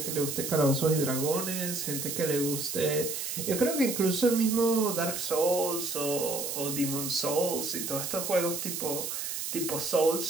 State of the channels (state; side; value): noise; right; hiss, 4 dB below the sound